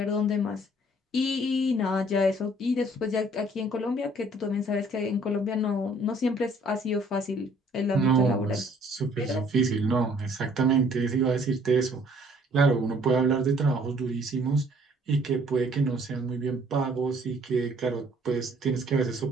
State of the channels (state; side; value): normal; both; correlation 0.59